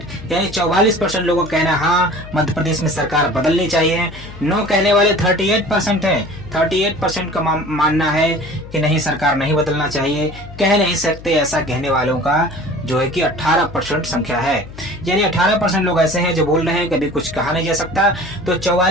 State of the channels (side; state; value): left; noise; hum, 16 dB below the sound